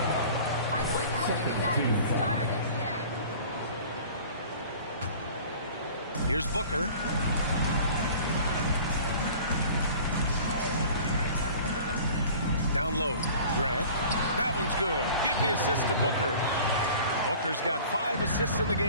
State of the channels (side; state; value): both; inverted; correlation -0.45